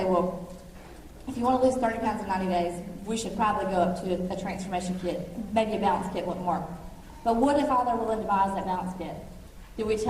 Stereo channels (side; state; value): both; identical; correlation 1.00